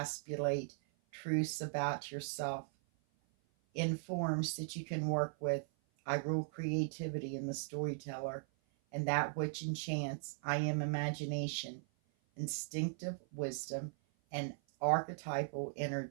truths about yourself in forms that you can work with. I rule creativity in the storyteller, and that which enchants. I am imagination, instinctive wisdom, and archetypal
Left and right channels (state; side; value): silent; left; 52 dB below the other